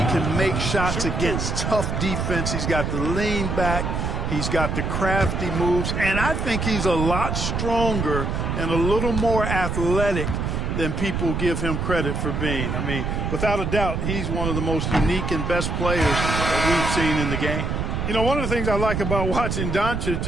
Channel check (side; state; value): right; noise; rumble, 1 dB below the sound